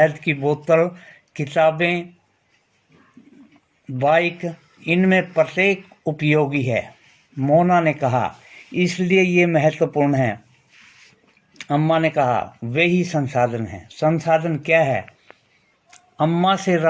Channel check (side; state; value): both; identical; correlation 1.00